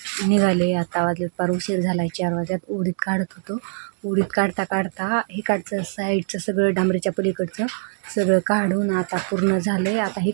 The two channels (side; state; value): left; silent; digital silence